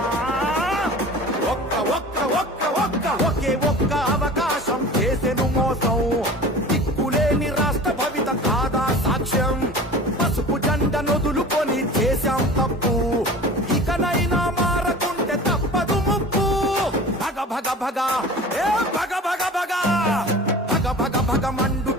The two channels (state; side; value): normal; both; correlation 0.39